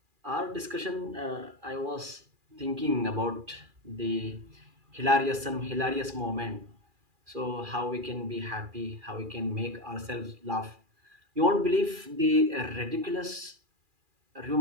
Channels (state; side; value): late; left; 2.4 ms